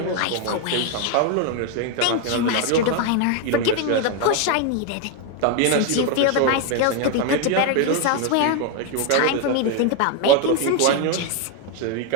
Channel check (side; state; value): both; different; correlation 0.01